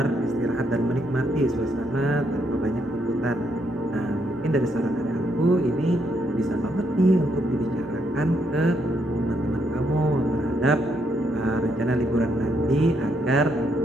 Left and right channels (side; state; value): both; normal; correlation 0.75